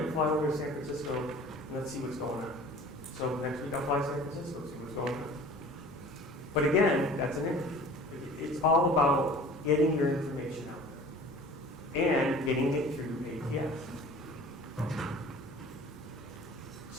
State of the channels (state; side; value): normal; both; correlation 0.44